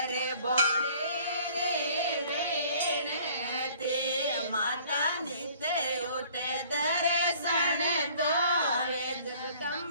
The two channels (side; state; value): both; inverted; correlation -0.54